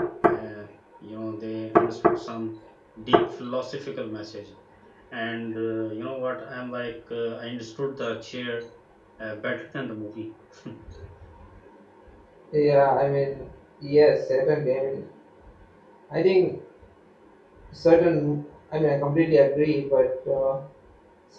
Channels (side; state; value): both; identical; correlation 1.00